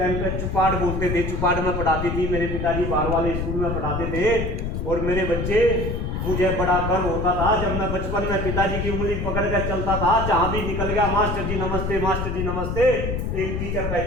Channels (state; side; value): noise; left; rumble, 2 dB below the sound